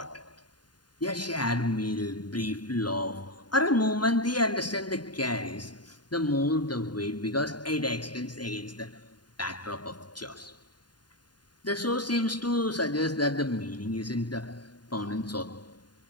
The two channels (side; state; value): right; late; 0.70 ms